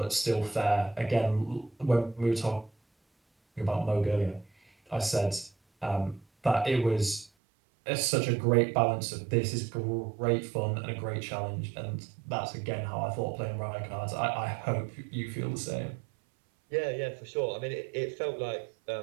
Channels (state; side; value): drops out; left; at 7.3 s